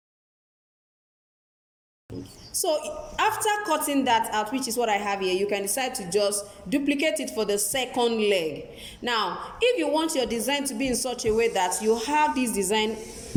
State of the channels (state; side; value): identical; both; correlation 1.00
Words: So after cutting that out, which is what I have here, you can decide to just duplicate it for the second leg. Now, if you want your design to be in such a way that you have this design